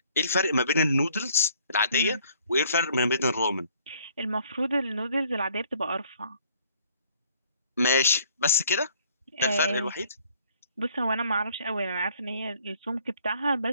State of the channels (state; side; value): inverted; both; correlation -0.60